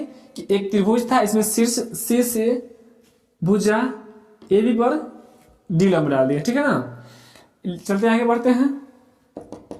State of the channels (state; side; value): identical; both; correlation 1.00